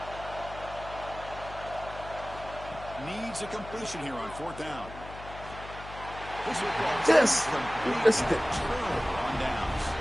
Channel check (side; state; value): left; noise; hum, 13 dB below the sound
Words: Needs a completion here on fourth down. This will Yes. complete turnover on downs.